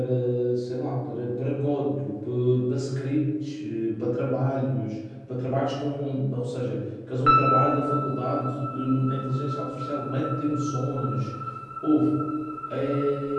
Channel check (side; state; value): both; identical; correlation 1.00